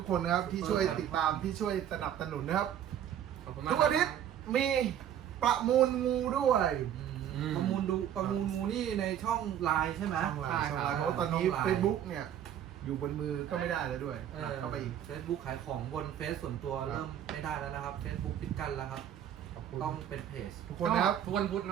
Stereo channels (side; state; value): left; quieter; 10.2 dB